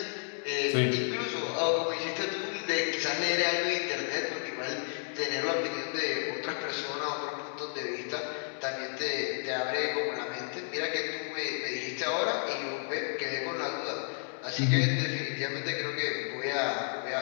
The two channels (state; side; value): silent; right; 56 dB below the other